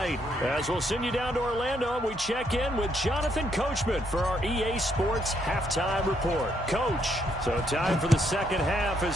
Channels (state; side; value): normal; both; correlation 0.73